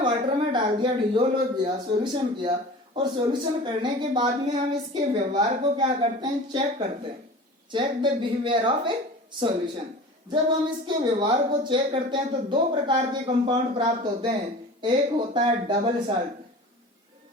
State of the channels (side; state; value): both; normal; correlation 0.38